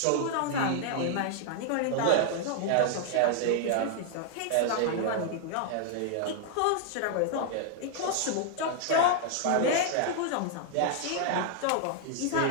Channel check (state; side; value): different; both; correlation 0.00